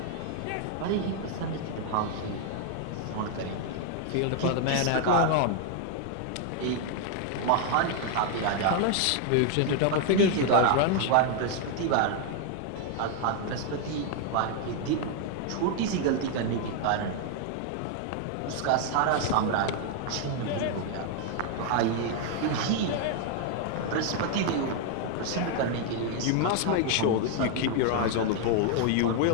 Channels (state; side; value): different; both; correlation 0.00